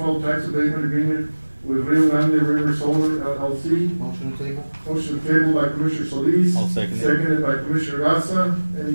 tax abatement agreement with Rio Grande River Solar LLC. Motion to table. Motion tabled by Commissioner Solis. I'll second it. Seconded by Commissioner Garza.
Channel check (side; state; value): both; inverted; correlation -1.00